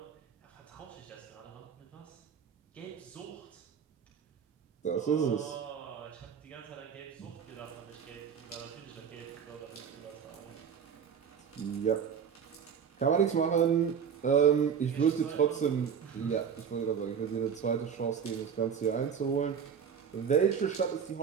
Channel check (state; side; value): quieter; left; 7.4 dB